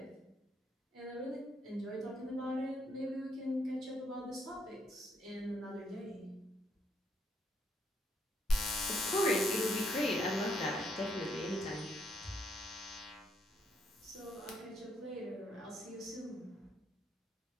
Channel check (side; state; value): both; normal; correlation 0.73